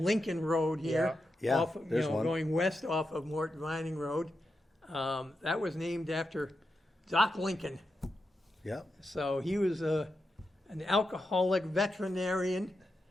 Road here, Yeah. Yeah, off, there's one. going west off of Mort Vining Road. That was named after Doc Lincoln. Yep. So he was an alcoholic veterinarian,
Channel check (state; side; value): normal; both; correlation 0.88